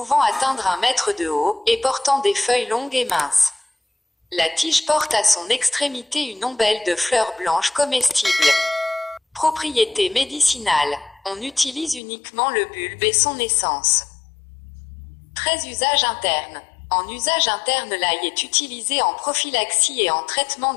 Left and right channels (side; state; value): right; drops out; at 12.0 s